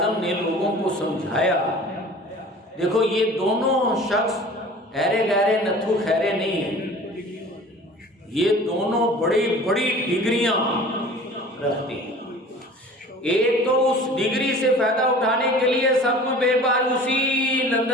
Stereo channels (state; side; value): normal; both; correlation 0.44